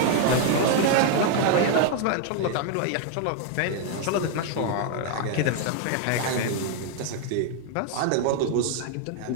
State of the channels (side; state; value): both; different; correlation 0.00